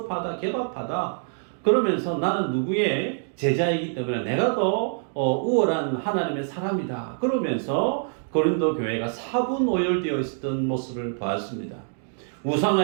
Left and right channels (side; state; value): left; silent; 61 dB below the other